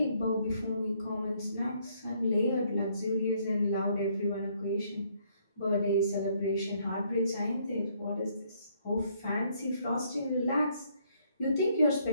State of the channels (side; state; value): both; inverted; correlation -0.68